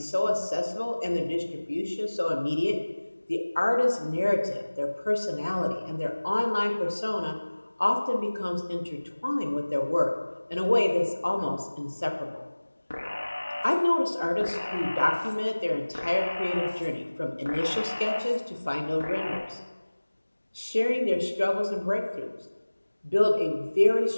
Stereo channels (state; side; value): inverted; both; correlation -1.00